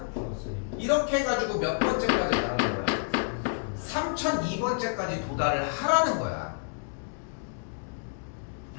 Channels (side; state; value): right; silent; digital silence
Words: 플러스. 이렇게 해가지고 몇 번째까지 가는 거야? 3002번째까지 도달을 하라는 거야.